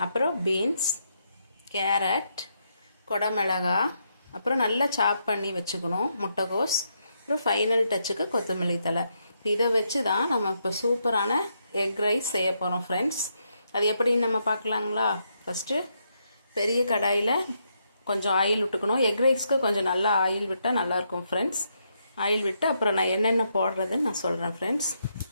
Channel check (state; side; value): inverted; both; correlation -0.78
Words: அப்புறம் பீன்ஸ், கேரட், கொடமிளகா, அப்புறம் நல்லா சாப் பண்ணி வச்சுக்கணும் முட்டைகோஸ், அப்புறம் ஃபைனல் டச்சுக்கு கொத்தமல்லி தழை. இதை வச்சு தான் நம்ம இப்போ சூப்பரான எக் ரைஸ் செய்ய போகிறோம் ஃப்ரெண்ட்ஸ். அது எப்படின்னு நம்ம பார்க்கலாங்களா? ஃபஸ்ட்டு பெரிய கடாயில் கொஞ்சம் ஆயில் விட்டுக்கணும். எக் ரைஸ்க்கு கொஞ்சம் நல்லா ஆயில் விட்டால் நல்லாயிருக்கும் ஃப்ரெண்ட்ஸ். ஆயில் விட்டு அப்புறம் நான் என்னென்ன போடுறதுன்னு நான் சொல்கிறேன் ஃப்ரெண்ட்ஸ்.